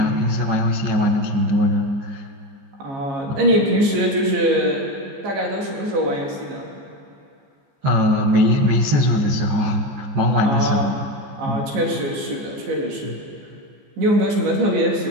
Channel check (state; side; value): late; left; 14 ms